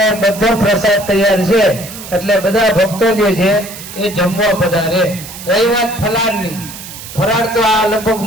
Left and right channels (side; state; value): right; noise; hiss, 13 dB below the sound